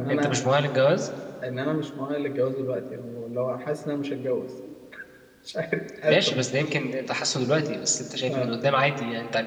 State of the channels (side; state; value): both; identical; correlation 1.00